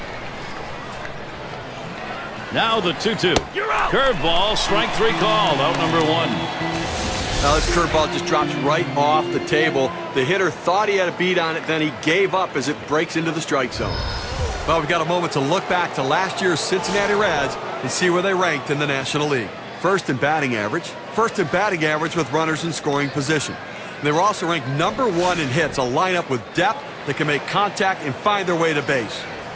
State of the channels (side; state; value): both; identical; correlation 1.00